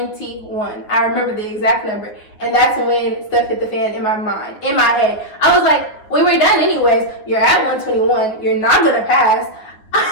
I remember the exact number. And that's when stuff hit the fan in my mind, in my head. I was like, we were done anyways. You're at 121. You're not going to pass.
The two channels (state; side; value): late; right; 9.6 ms